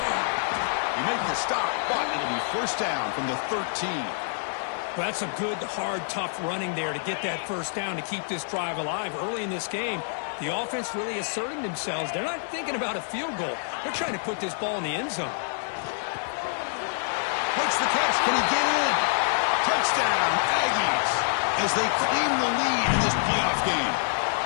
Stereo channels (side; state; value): right; silent; 60 dB below the other